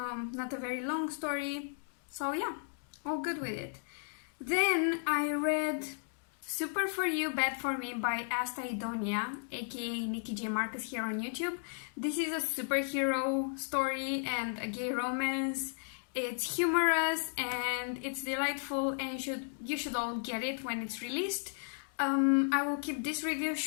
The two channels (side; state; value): right; silent; digital silence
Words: a very long story, so yeah, all good with it. Then I read Super For You, Bad For Me by Asta, Idonea, aka Nikki J. Marcus here on YouTube. This is a superhero story and a gay romance. It's humorous and it's delightful, and you should all get it when it's released. I will keep this review